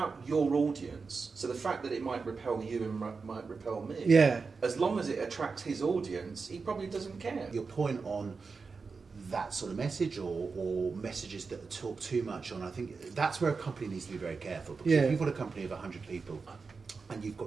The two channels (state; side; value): quieter; left; 4.7 dB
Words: your audience. So the fact that it might repel you and might repel me. Yeah. As long as it attracts his audience, he probably doesn't care. Your point on that sort of message or messages that talk too much on, I think that's where a company needs to be very careful. Because if you've got a company of 100 people and you've